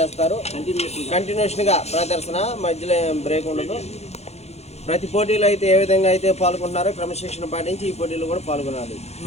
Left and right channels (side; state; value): right; late; 0.31 ms